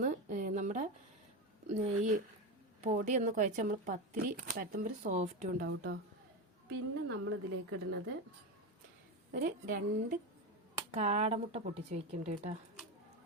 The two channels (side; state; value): both; normal; correlation 0.17